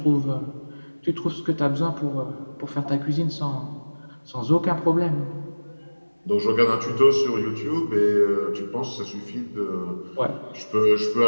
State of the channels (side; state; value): both; inverted; correlation -1.00